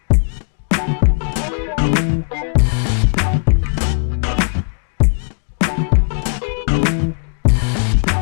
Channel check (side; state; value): right; silent; 63 dB below the other